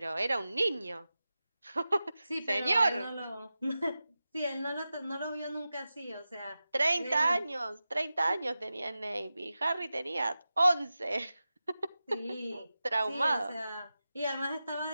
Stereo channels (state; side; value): inverted; both; correlation -0.93